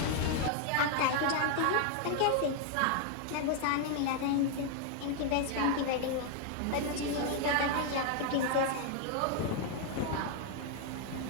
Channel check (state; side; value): different; both; correlation 0.00